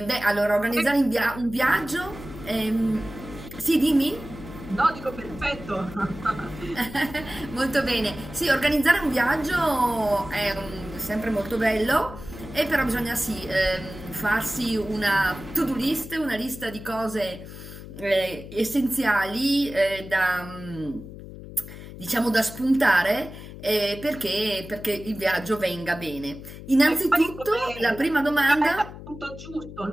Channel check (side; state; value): left; noise; hum, 13 dB below the sound